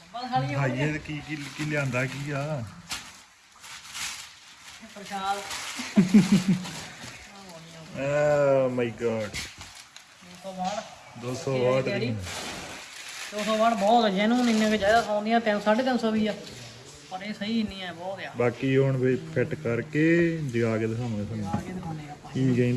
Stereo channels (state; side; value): identical; both; correlation 1.00